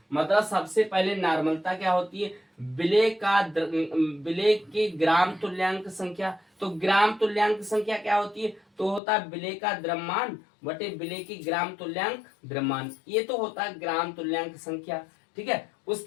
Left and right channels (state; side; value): drops out; right; at 9.0 s